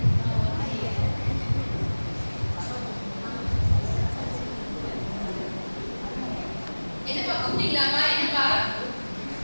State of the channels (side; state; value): both; inverted; correlation -1.00